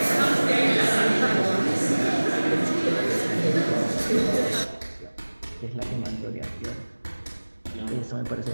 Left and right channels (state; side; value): inverted; both; correlation -1.00